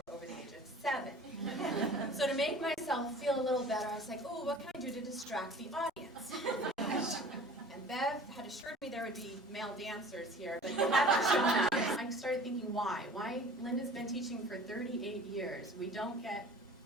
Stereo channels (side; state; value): both; normal; correlation 0.45